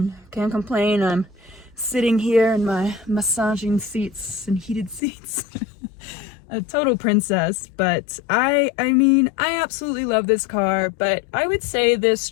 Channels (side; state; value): right; drops out; at 5.0 s